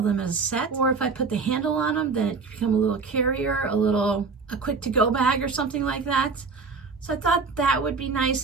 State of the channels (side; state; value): left; quieter; 4.7 dB